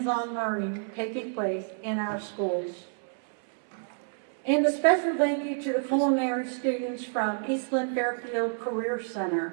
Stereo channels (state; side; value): silent; left; 59 dB below the other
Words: learning taking place in our schools. And a special thank you to the culinary students from Eastland Fairfield Career